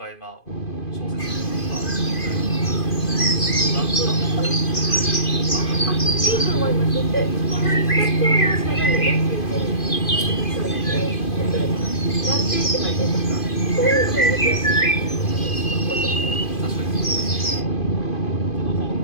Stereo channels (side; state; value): right; late; 2.5 ms